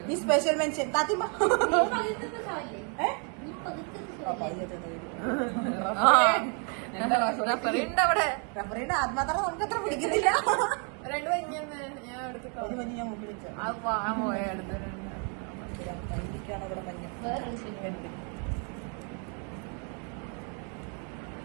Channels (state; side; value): quieter; left; 38.2 dB